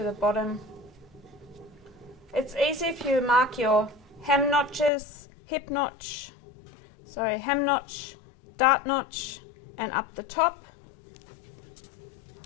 the bottom. It's easy if you mark your hem notches, hip notch, hem notch, dart notch, and up the top,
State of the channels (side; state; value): right; drops out; at 4.9 s